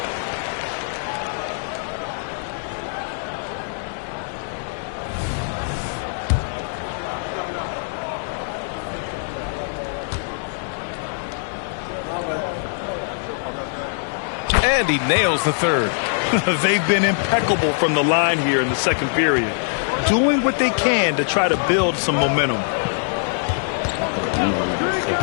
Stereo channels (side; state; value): right; silent; digital silence